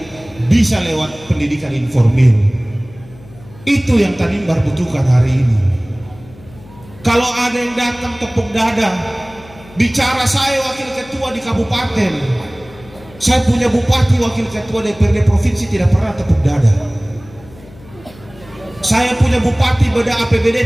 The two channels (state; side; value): noise; left; hum, 22 dB below the sound